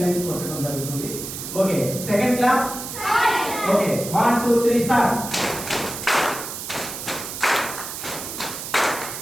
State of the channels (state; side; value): noise; right; hiss, 8 dB below the sound